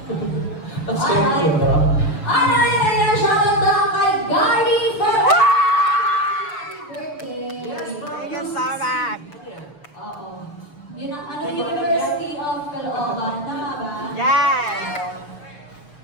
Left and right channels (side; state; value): right; late; 6.9 ms